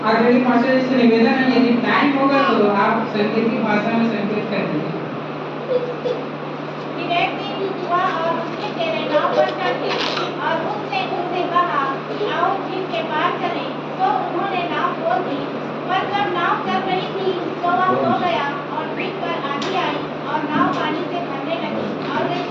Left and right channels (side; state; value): both; identical; correlation 1.00